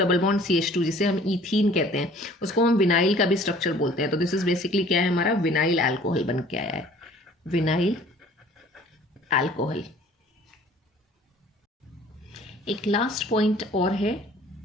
bond CH2 जिसे हम ईथीन कहते हैं, उसको हम विनाइल का भी स्ट्रक्चर बोलते हैं। तो दिस इज बेसिकली क्या है, हमारा विनाइल अल्कोहल बन के आया है, विनाइल अल्कोहल। एक लास्ट पॉइंट और है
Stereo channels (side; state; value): both; normal; correlation 0.52